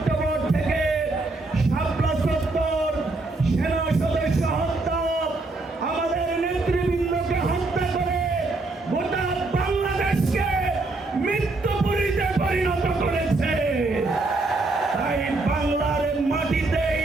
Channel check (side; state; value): left; quieter; 3.2 dB